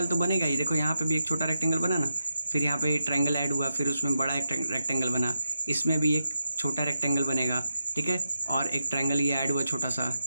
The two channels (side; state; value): both; inverted; correlation -0.86